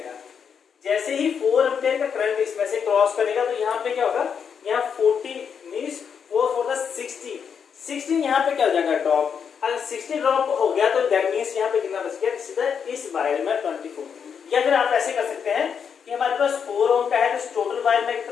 जैसे ही 4 एम्पीयर का करंट इसमें से क्रॉस करेगा तो यहाँ पे क्या होगा, यहाँ 40 मींस 4 4 = 60, 60 यहाँ पे क्या हो जाएगा, ड्रॉप। अगर 60 ड्रॉप हो गया तो दैट मींस यहाँ पे कितना बच गया, सीधा इस वायर में 24। या फिर आप ऐसे कर सकते हैं कि हमारे पास 4 ओम का है तो टोटल वायर में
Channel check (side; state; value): right; quieter; 7.0 dB